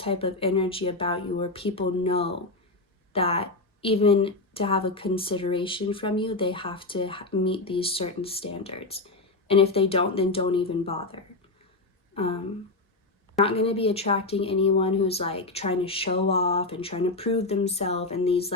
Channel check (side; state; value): right; quieter; 3.1 dB